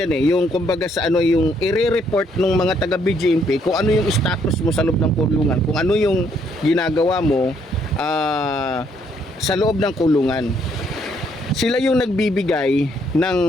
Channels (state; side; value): normal; both; correlation 0.70